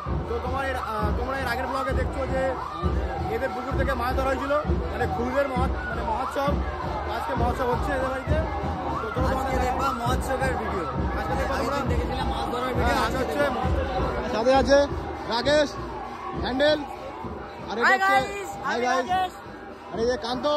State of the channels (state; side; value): identical; both; correlation 1.00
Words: তো তোমরা এর আগের ব্লগে দেখছো যে এদের পুকুর থেকে মাছ ধরা হয়েছিল, মানে খুদের মহোৎসব। আজকে মহোৎসব হচ্ছে এদের বাড়িতে, তো তোমাদের দেখবা মহোৎসবের ভিডিও। আজকে দেখবা তোমরা দেখেছিলাম মাছ ধরার ভিডিও। আজ হচ্ছে সাথে আছে রাকেশ, হ্যান্ডেল, আর এই হচ্ছে হাই গাইস, আর এই যে কান্ত,